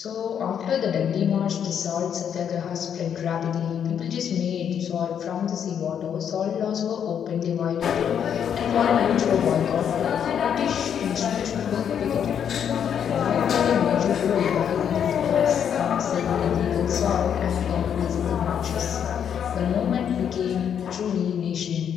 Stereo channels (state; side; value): quieter; right; 8.4 dB